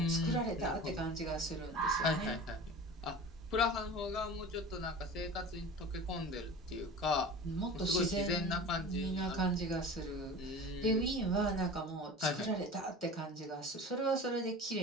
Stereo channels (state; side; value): normal; both; correlation 0.36